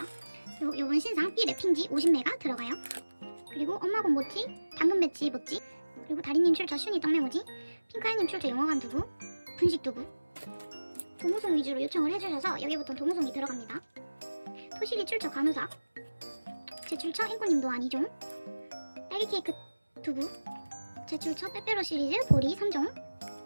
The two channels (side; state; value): both; inverted; correlation -1.00